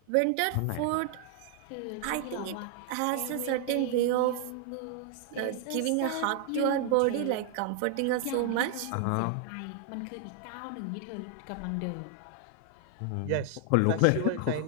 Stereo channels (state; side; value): different; both; correlation 0.00